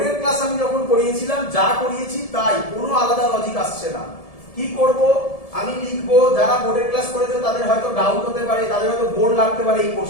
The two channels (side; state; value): right; late; 1.7 ms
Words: ক্লাস আমি যখন করিয়েছিলাম যা করিয়েছি তাই, কোনো আলাদা লজিক আসছে না। কি করব? আমি লিখবো, যারা বোর্ডের ক্লাস করেছে তাদের হয়তো ডাউট হতে পারে, তাদের হয়তো বোর্ড লাগতে পারে এই